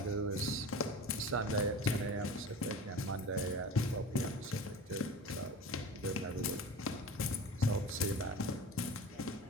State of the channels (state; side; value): normal; both; correlation 0.35